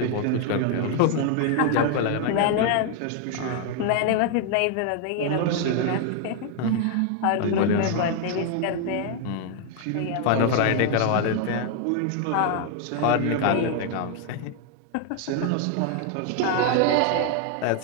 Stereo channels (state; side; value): different; both; correlation 0.00